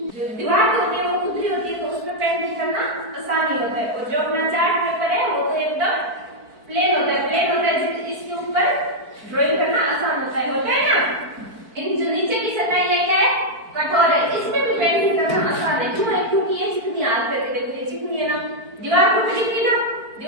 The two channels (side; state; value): left; late; 4.5 ms